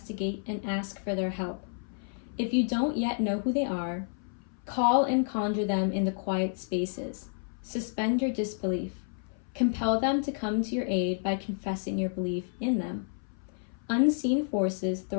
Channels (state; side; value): silent; right; 58 dB below the other